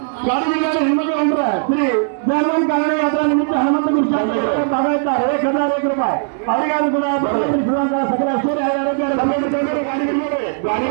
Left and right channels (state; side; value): silent; left; digital silence